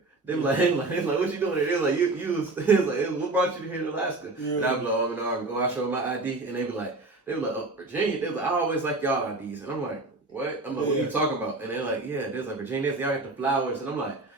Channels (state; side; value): quieter; left; 3.1 dB